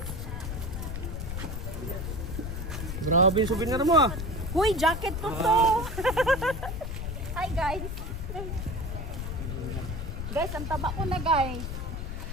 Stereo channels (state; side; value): noise; left; rumble, 5 dB below the sound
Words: Grabe yung souvenir mo ah. Uy, jacket ko to! Hi guys! Guys, ang taba ko na guys.